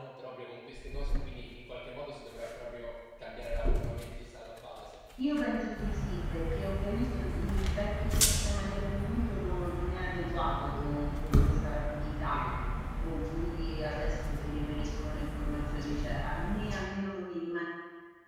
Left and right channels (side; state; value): both; identical; correlation 1.00